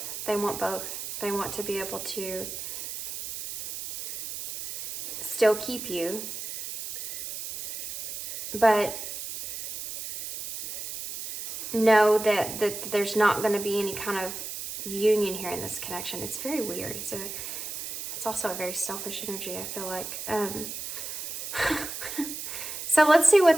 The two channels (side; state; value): right; noise; hiss, 7 dB below the sound